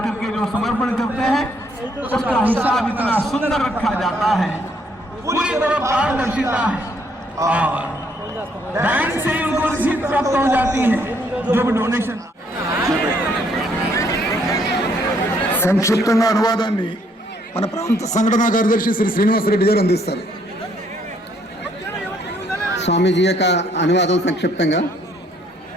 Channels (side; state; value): both; normal; correlation 0.68